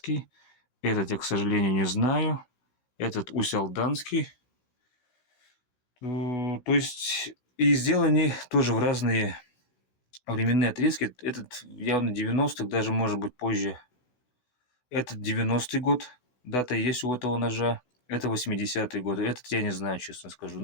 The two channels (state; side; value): late; right; 16 ms